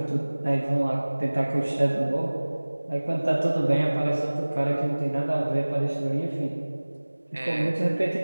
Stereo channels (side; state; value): both; inverted; correlation -1.00